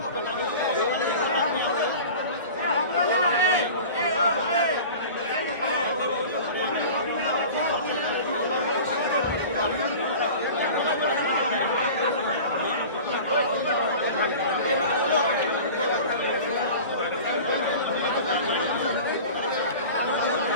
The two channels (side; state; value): both; inverted; correlation -0.38